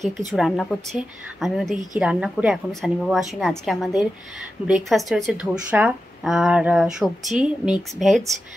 কিছু রান্না করছে, আমি ওদিকে কি রান্না করি এখনও সানিবাবু আসেনি। আজকে আমাদের ব্রেকফাস্টে হয়েছে ধোসা আর সবজি মিক্স ভেজ,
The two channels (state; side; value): normal; both; correlation 0.92